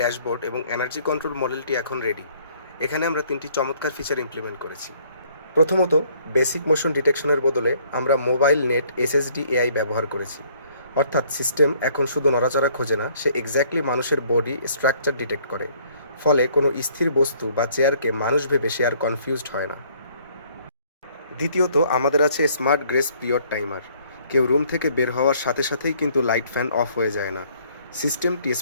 এবং এনার্জি কন্ট্রোল মডেলটি এখন রেডি। এখানে আমরা 3টি চমৎকার ফিচার ইমপ্লিমেন্ট করেছি। প্রথমত, বেসিক মোশন ডিটেকশনের বদলে আমরা মোবাইল নেট এসএসডি এআই ব্যবহার করেছি। অর্থাৎ সিস্টেম এখন শুধু নড়াচড়া খোঁজে না, সে এক্স্যাক্টলি মানুষের বডি স্ট্রাকচার ডিটেক্ট করে। ফলে কোনো স্থির বস্তু বা চেয়ারকে মানুষ ভেবে সে আর কনফিউজড হয় না। দ্বিতীয়ত, আমাদের আছে স্মার্ট গ্রেস পিরিয়ড টাইমার। কেউ রুম থেকে বের হওয়ার সাথে সাথেই কিন্তু লাইট ফ্যান অফ হয়ে যায় না। সিস্টেমটি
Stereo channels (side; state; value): both; inverted; correlation -0.62